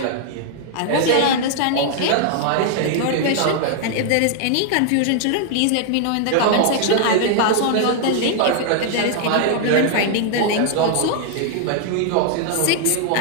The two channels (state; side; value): different; both; correlation 0.00